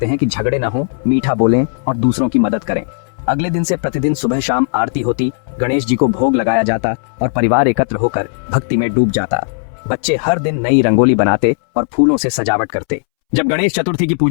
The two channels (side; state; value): right; silent; 68 dB below the other